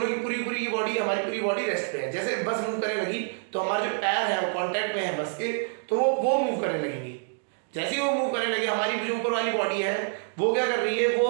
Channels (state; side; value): silent; left; 60 dB below the other